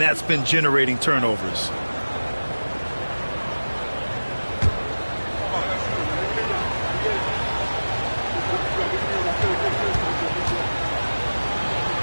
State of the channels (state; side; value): inverted; both; correlation -1.00